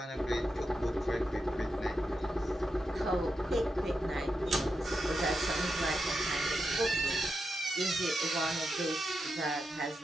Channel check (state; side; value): normal; both; correlation 0.87